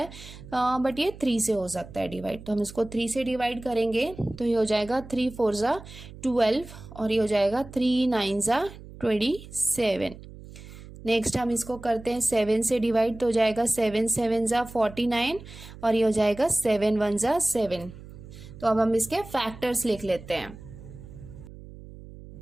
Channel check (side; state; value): right; noise; hum, 16 dB below the sound